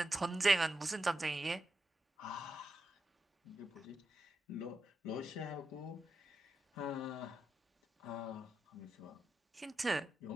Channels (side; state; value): both; normal; correlation 0.87